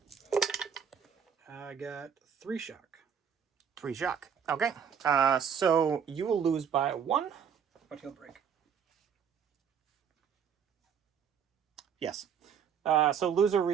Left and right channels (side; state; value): left; quieter; 7.5 dB